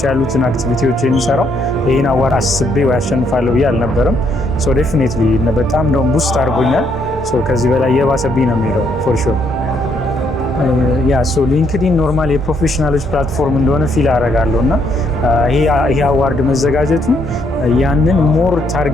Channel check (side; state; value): both; normal; correlation 0.72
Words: ያሉትን አክቲቪቲዎች የሚሰራው ይህን አዋርድ አስቤ ወይ አሸንፋለሁ ብዬ አልነበረም። ሶ ዴፊኒትሊ በጣም እንደውም ቡስት አድርጎኛል። ከዚህ በላይ የባሰብኝ ነው የሚሄደው ፎር ሹር። ሊንክድኢን ኖርማል የፕሮፌሽናሎች ፕላትፎርም እንደሆነ ፊል አደርጋለሁ እና ይሄ አዋርድ መዘጋጀቱ ያንን ሞር